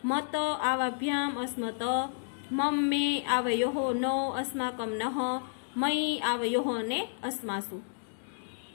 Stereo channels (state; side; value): silent; right; digital silence